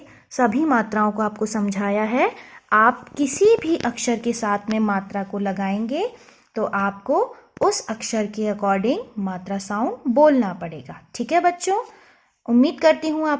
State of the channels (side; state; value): both; identical; correlation 1.00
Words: सभी मात्राओं को आपको समझाया है। आप किसी भी अक्षर के साथ में मात्रा को लगाएंगे तो आपको उस अक्षर के अकॉर्डिंग मात्रा साउंड बोलना पड़ेगा। ठीक है बच्चों। उम्मीद करती हूँ